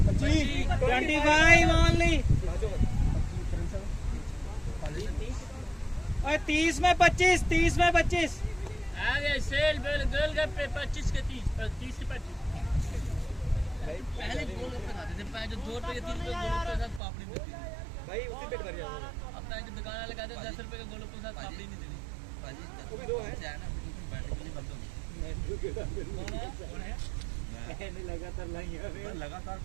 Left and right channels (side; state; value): left; drops out; at 17.0 s